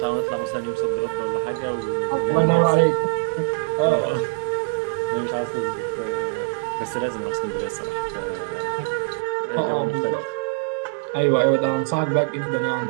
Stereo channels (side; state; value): left; silent; 62 dB below the other